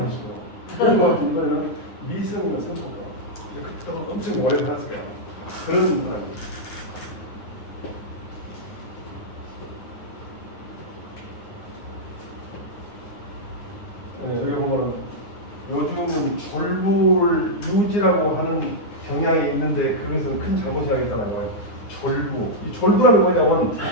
있어요. 그래서 이번에는 미성년 선고가 그때 엄청 오래 살았을 거야. 그런 사람이. 여기 보면은 요즘 졸부를 유지라고 하는 경향이 있는데 그것은 큰 잘못이라고 했잖아요. 졸부. 이 졸부라는 게 뭐냐면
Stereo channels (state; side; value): late; right; 9.6 ms